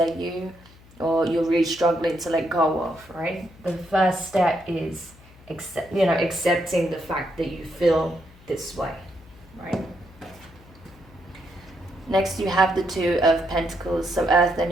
you, or you're really struggling to let go of, right? The first step is accepting the fact that you feel this way, right? Next, you have the Two of Pentacles, so Earth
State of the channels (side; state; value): left; noise; hum, 24 dB below the sound